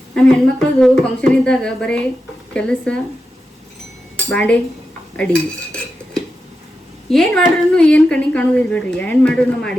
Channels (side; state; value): both; normal; correlation 0.89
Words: ನಮ್ಮ ಹೆಣ್ಮಕ್ಳದು ಫಂಕ್ಷನ್ ಇದ್ದಾಗ ಬರೀ ಕೆಲಸ, ಬಾಂಡೆ, ಅಡಿಗೆ. ಏನು ಮಾಡ್ರೂ ಏನು ಕಣ್ಣಿಗೆ ಕಾಣೋದಿಲ್ಲ ಬಿಡ್ರಿ. ಏನು ಮಾಡ್ರೂ